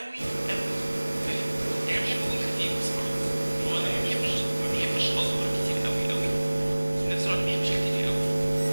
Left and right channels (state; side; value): inverted; both; correlation -1.00